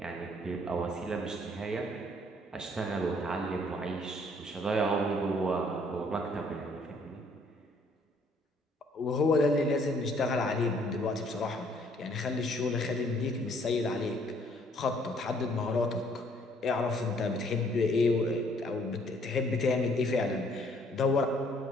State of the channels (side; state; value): both; normal; correlation 0.63